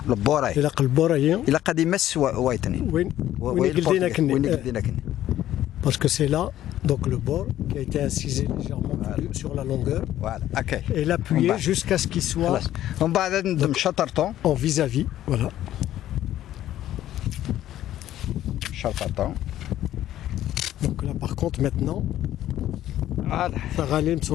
البوراي الى البوراي الى قد يمس وايتنين وين قلدينا كني parce que c'est là donc le bord qui a été incisé légèrement sur la longueur et l'appuyer jusqu'à ce qu'il soit ومن بعد ندم شطرطون en vis-à-vis voilà شطرطون donc là par contre maintenant Faralim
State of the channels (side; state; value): right; quieter; 12.8 dB